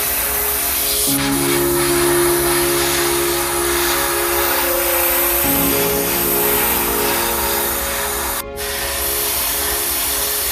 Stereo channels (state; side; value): identical; both; correlation 1.00